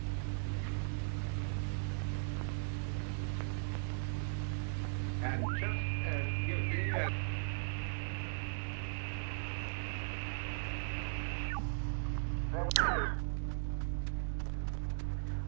And just as guilty as...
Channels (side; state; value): left; silent; digital silence